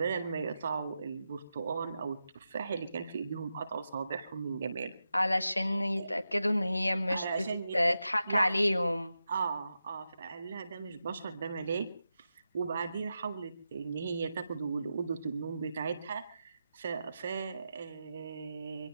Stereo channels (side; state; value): both; inverted; correlation -0.89